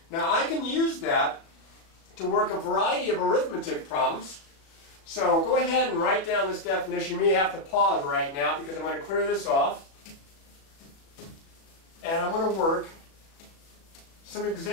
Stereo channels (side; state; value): right; late; 36 ms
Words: Now I can use that to work a variety of arithmetic problems. So go ahead and write down this definition. You may have to pause right now because I'm going to clear this off. And I'm going to work some